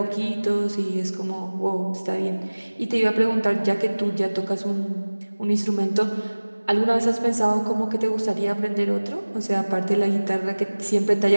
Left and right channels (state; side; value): inverted; both; correlation -1.00